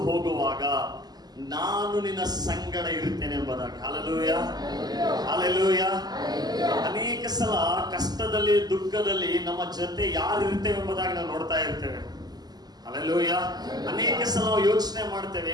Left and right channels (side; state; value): left; late; 0.20 ms